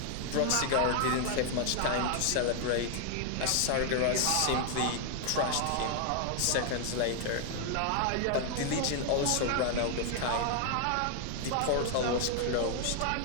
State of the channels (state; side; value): different; both; correlation 0.00